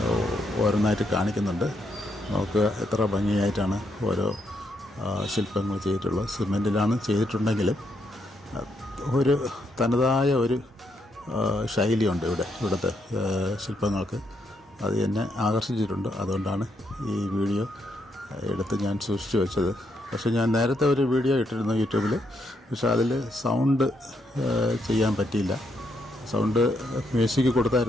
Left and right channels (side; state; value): both; normal; correlation 0.77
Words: ഓരോന്നായിട്ട് കാണിക്കുന്നുണ്ട്. നമുക്ക് എത്ര ഭംഗിയായിട്ടാണ് ഓരോ ശില്പങ്ങൾ ചെയ്തിട്ടുള്ളത്. സിമെൻറ്റിലാണ് ചെയ്തിട്ടുണ്ടെങ്കിലും ഒരു തനതായ ഒരു ശൈലിയുണ്ട് ഇവിടുത്തെ ശില്പങ്ങൾക്ക്. അത് എന്നെ ആകർഷിച്ചിട്ടുണ്ട്. അതുകൊണ്ടാണ് ഈ വീഡിയോ എടുത്ത് ഞാൻ സൂക്ഷിച്ചു വെച്ചത്. പക്ഷേ ഞാൻ നേരത്തെ ഒരു വീഡിയോ ഇട്ടിരുന്നു യൂട്യൂബിൽ. പക്ഷേ അതിൽ സൗണ്ട് ചെയ്യാൻ പറ്റിയില്ല. സൗണ്ട് മ്യൂസിക്